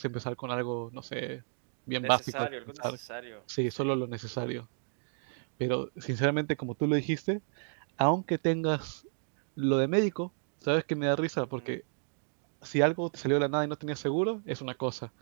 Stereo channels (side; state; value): left; silent; digital silence